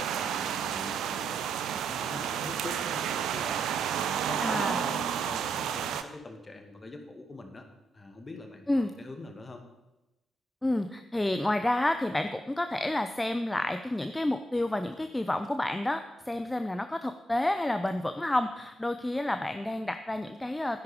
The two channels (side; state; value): both; normal; correlation 0.83